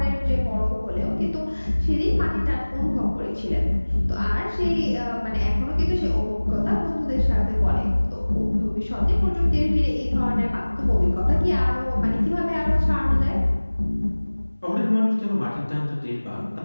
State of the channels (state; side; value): inverted; both; correlation -1.00